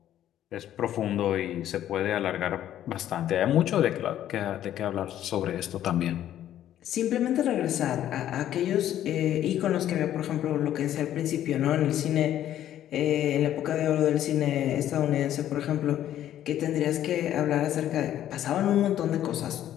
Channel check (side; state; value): right; quieter; 11.7 dB